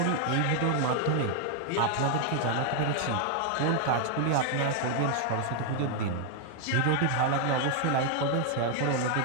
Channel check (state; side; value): different; both; correlation 0.00